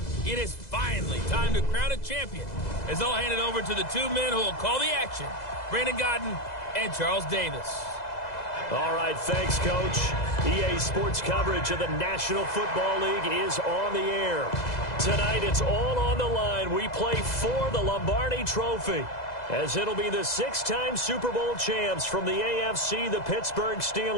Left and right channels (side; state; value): right; late; 2.0 ms